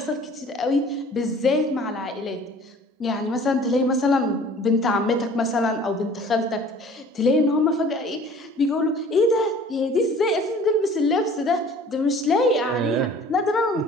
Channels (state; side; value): normal; both; correlation 0.49